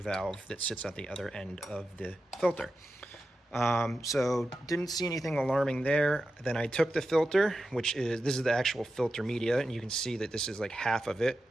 that sits at the other end of the filter. So didn't see anything alarming there. Then I took the filter, this is the actual filter media, and you can see that this is like half of it.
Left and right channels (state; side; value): normal; both; correlation 0.91